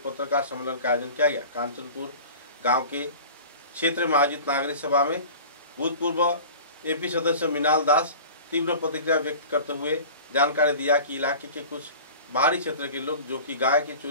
पत्रकार सम्मेलन का आयोजन किया गया। कांचनपुर गांव के क्षेत्र में आयोजित नागरिक सभा में भूतपूर्व एपी सदस्य मिनाल दास तीव्र प्रतिक्रिया व्यक्त करते हुए जानकारी दिया कि इलाके के कुछ बाहरी क्षेत्र के लोग जो कि गाय की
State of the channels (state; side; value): inverted; both; correlation -0.39